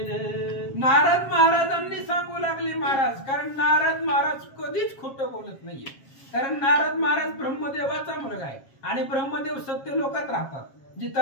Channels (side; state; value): right; late; 7.3 ms